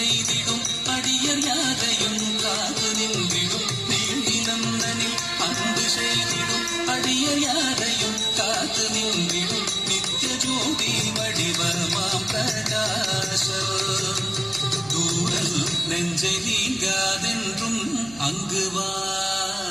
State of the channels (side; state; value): right; noise; hum, 21 dB below the sound